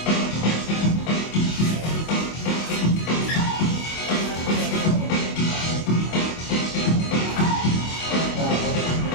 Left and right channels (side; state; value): right; late; 25 ms